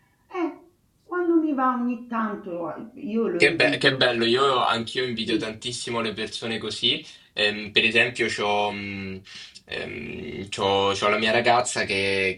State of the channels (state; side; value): identical; both; correlation 1.00